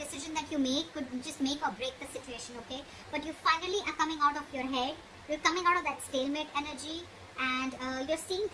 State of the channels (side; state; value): both; identical; correlation 1.00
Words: that you make could just make or break the situation, okay? But you finally are coming out of your head. You're coming out of that stalemate energy, and you're seeing